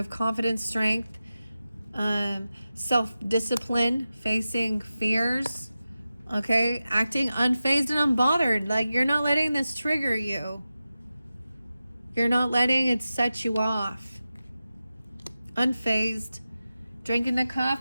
confidence, strength, self-discipline, facing fears. Okay, acting unfazed and unbothered. Like, you're not letting this trigger you. You're not letting it set you off. Unfazed. Drinking the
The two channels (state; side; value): inverted; both; correlation -0.93